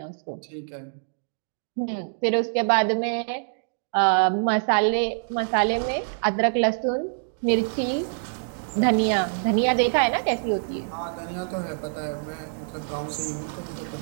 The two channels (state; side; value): silent; left; digital silence